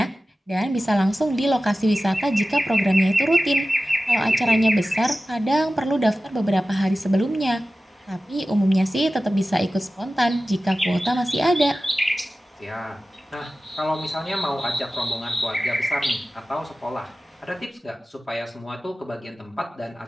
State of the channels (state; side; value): normal; both; correlation 0.95